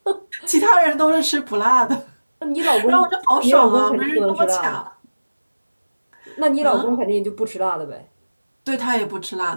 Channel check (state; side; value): inverted; both; correlation -1.00